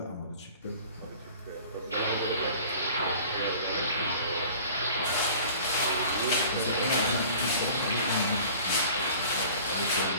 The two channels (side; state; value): both; inverted; correlation -0.46